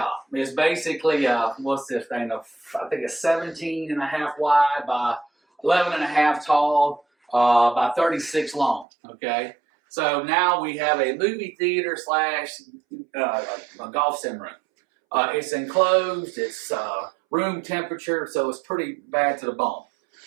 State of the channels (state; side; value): drops out; left; at 8.8 s